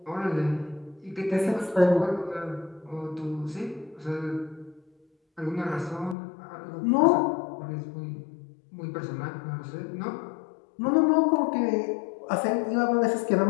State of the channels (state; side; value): drops out; right; at 6.2 s